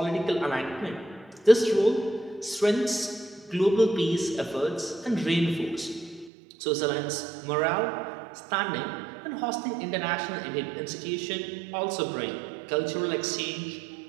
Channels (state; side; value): drops out; left; at 6.3 s